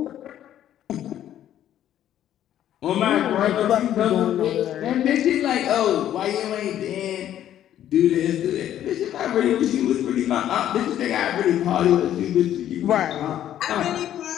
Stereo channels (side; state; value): right; quieter; 11.4 dB